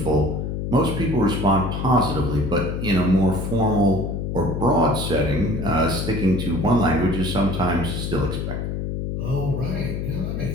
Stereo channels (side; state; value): left; noise; hum, 3 dB below the sound